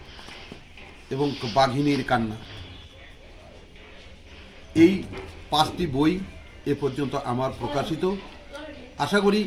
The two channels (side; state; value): both; identical; correlation 1.00